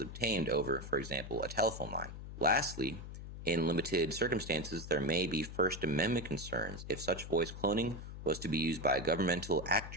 over, for example, a telephone line. Lastly, in limited circumstances, there may be First Amendment concerns if such voice cloning was to be used by a governmental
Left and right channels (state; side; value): noise; left; hum, 10 dB below the sound